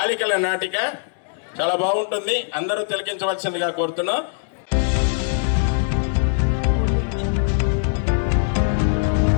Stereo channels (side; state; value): right; silent; digital silence